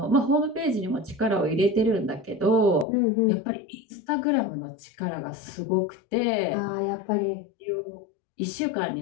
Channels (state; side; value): drops out; right; at 2.9 s